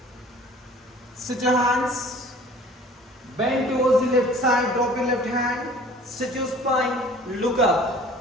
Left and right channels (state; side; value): normal; both; correlation 0.49